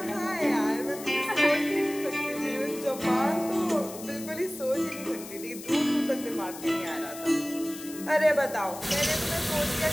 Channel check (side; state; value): left; noise; hiss, 13 dB below the sound